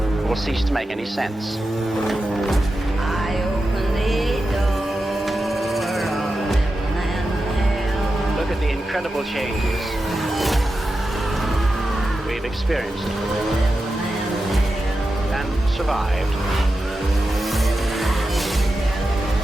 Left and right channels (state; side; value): normal; both; correlation 0.91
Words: will cease to make any sense. I open the door of heaven and hell. Look at the incredible changes we've experienced and survived.